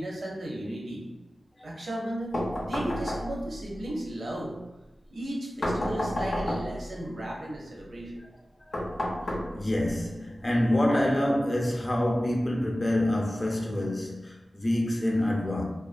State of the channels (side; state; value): both; normal; correlation 0.96